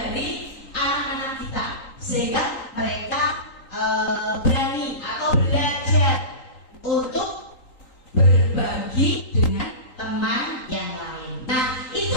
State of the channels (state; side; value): late; right; 3.8 ms